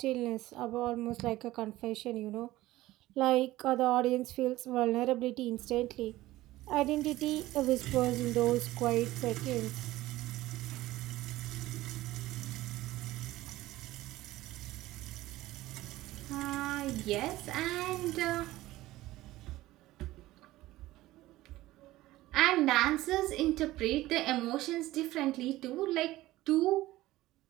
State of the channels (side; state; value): left; quieter; 16.9 dB